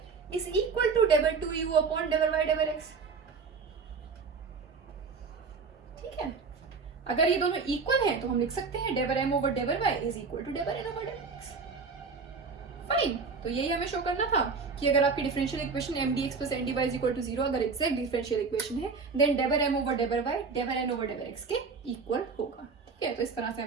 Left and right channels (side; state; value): left; quieter; 4.9 dB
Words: इज इक्वल टू डेबर 2u अपॉन डेबर y डेबर x। ठीक है, अगर ये दोनों इक्वल हैं तो हम लिख सकते हैं डेबर m ओवर डेबर y इज इक्वल टू डेबर n ओवर डेबर x। फाइन, तो यही हमें शो करना था कि अगर आपकी differential equation M d x plus N d y is equal to 0 अगर एग्जैक्ट डिफरेंशियल इक्वेशन है देन डेबर m ओवर डेबर y डेबर n ओवर डेबर x के इक्वल होगा। ठीक है, तो इस तरह से